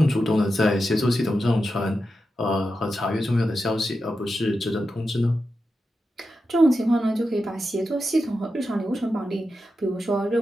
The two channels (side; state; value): both; normal; correlation 0.89